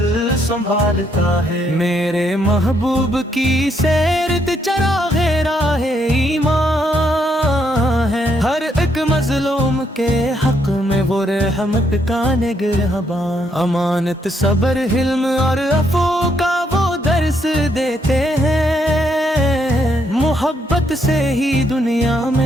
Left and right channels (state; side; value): normal; both; correlation 0.74